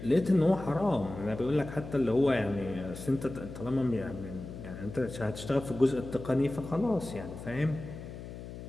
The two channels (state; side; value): noise; left; hum, 11 dB below the sound